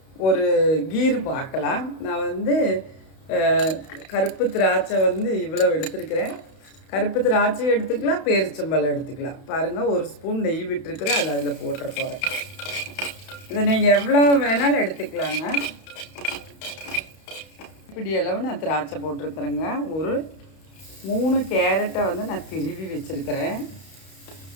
ஒரு கீர் பார்க்கலாம். நான் கருப்பு திராட்சை இவ்வளோ எடுத்துருக்கிறேன். கருப்பு திராட்சை எடுத்துக்கலாம், பேரிச்சம்பழம் எடுத்துக்கலாம். பாருங்கள், ஒரு ஸ்பூன் நெய் விட்டுருக்குறேன், அது அதில் போட்டுற போகிறேன். இதை நீங்கள் எவ்வளோ வேணாலும் எடுத்துக்கலாங்க. இப்படி அளவு நான் திராட்சை போட்டிருக்கிறேங்க. ஒரு 3 கேரட்டை நான் திருவி வச்சுருக்கிறேன்.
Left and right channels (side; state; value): right; late; 32 ms